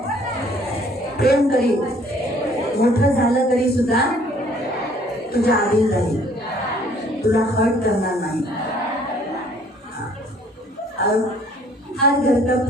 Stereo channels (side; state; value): both; normal; correlation 0.58